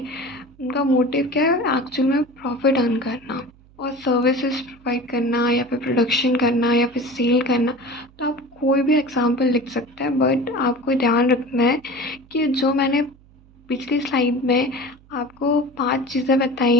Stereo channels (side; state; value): right; noise; hum, 27 dB below the sound